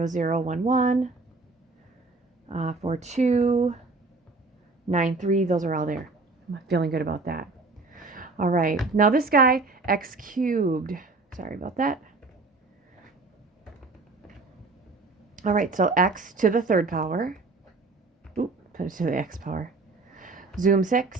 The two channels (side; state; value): left; quieter; 3.7 dB